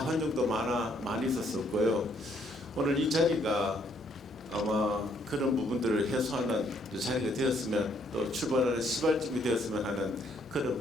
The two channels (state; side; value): normal; both; correlation 0.69